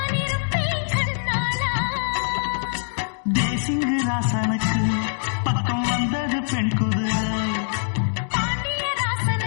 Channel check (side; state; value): right; silent; digital silence